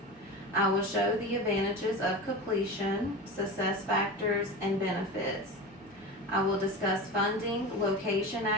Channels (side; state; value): both; normal; correlation 0.27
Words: I will show the advantages of completion, success factors, and benefits. I will discuss funding, location